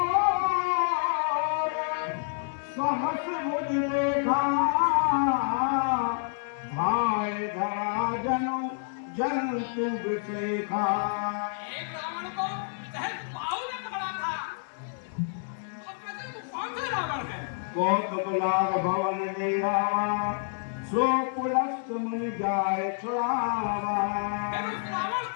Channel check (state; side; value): silent; right; digital silence